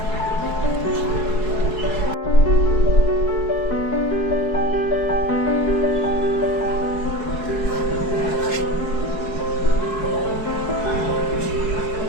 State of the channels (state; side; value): late; right; 4.6 ms